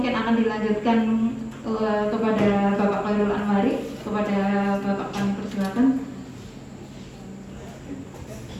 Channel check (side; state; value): both; identical; correlation 1.00